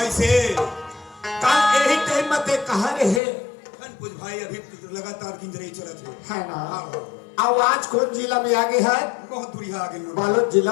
ऐसे कल यही टाइम में ते कहा रहे कुछ भाई अभी लगातार गिंजरई चलत है ना हाँ आवाज कौन जिला में आगे है बहुत दूरिया आगे लोग बालोद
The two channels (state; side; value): drops out; right; at 3.2 s